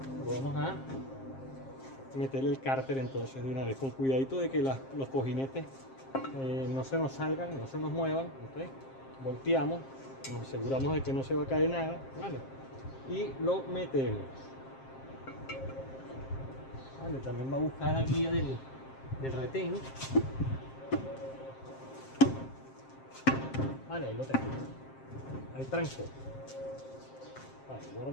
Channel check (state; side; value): late; right; 7.5 ms